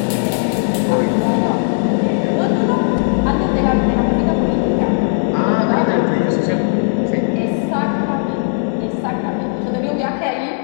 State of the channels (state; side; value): silent; right; digital silence